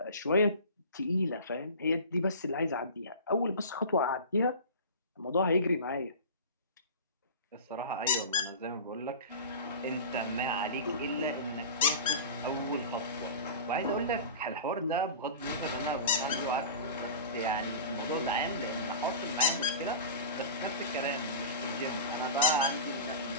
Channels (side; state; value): both; inverted; correlation -0.34